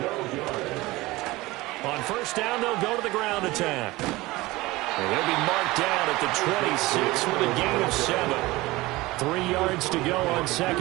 On first down, they'll go to the ground attack. And they'll be marked down at the 26 with a gain of 7. 3 yards to go on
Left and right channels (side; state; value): left; quieter; 20.2 dB